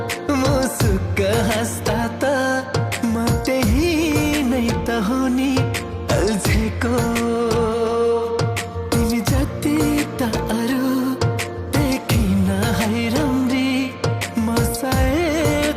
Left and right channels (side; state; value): both; identical; correlation 1.00